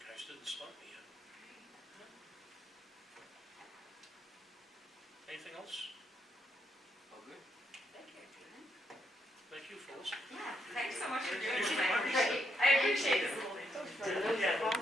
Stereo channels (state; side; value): normal; both; correlation 0.77